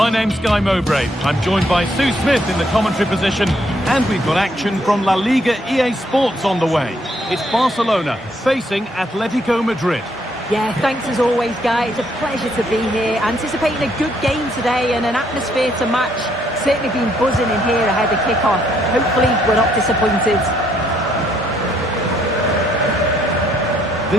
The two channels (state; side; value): normal; both; correlation 0.70